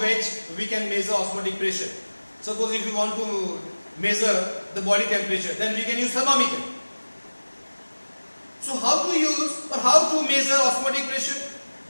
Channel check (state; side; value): inverted; both; correlation -1.00